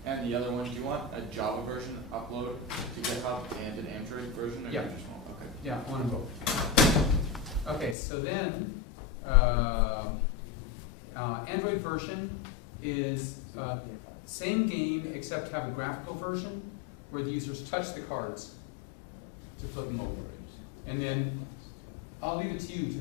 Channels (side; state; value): right; drops out; at 8.0 s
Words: and the other one, do you want a Java version upload to GitHub and an Android version? Or Yeah. you just want, okay. Yeah, one and both. Okay, so then Android version is same game except have a graphical version where the users touch the cards to flip them over, and then I'll leave it to you to